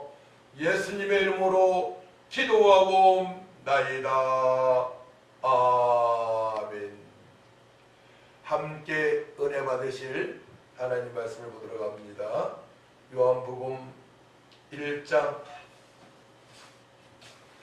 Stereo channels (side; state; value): both; identical; correlation 1.00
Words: 예수님의 이름으로 기도하고 나이다. 아멘. 함께 은혜 받으실 하나님 말씀을 보도록 합니다. 요한복음 1장